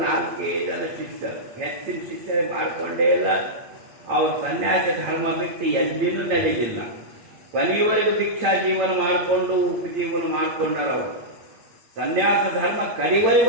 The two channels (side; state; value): left; late; 8.9 ms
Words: 4 ಜನ ಶಿಷ್ಯರು, ಹೆಚ್ಚಿನ ಶಿಷ್ಯರೇ ಮಾಡ್ಕೊಂಡೇ ಇಲ್ಲ. ಅವ್ರ ಸನ್ಯಾಸಿ ಧರ್ಮ ಬಿಟ್ಟು ಎಲ್ಲಿನೂ ನಡೆಯಲಿಲ್ಲ. ಕೊನೆಯವರೆಗೂ ದೀಕ್ಷಾ ಜೀವನ ಮಾಡಿಕೊಂಡು ಉಪಜೀವನ ಮಾಡ್ಕೊಂಡಾರ. ಅವರು ಸನ್ಯಾಸ ಧರ್ಮ